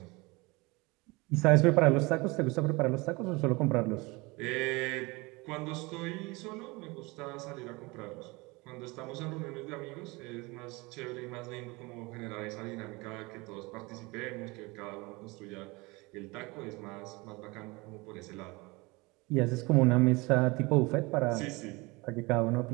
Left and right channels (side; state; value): left; quieter; 24.8 dB